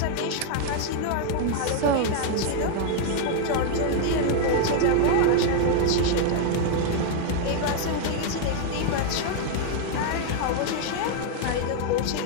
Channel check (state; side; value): different; both; correlation 0.00